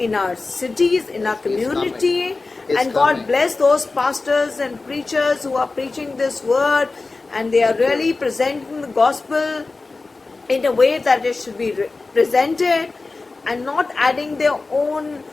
our cities, in our community. It's And God coming. bless those pastors and preachers who are preaching this word, and they are really presenting the gospel in a way that it should be presented, and not adding their own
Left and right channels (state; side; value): quieter; right; 3.7 dB